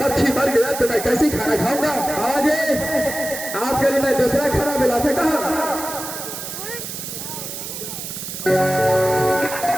मक्खी मर गया तो मैं कैसे खाना खाऊंगा? आज आपके लिए मैं दूसरा खाना मिला सकता हूं।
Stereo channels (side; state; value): right; noise; hiss, 8 dB below the sound